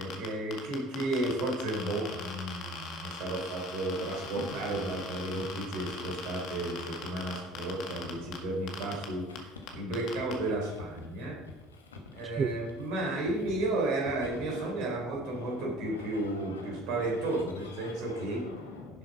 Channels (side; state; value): both; normal; correlation 0.46